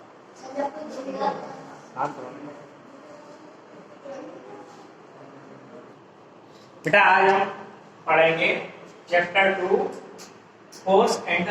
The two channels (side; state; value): both; identical; correlation 1.00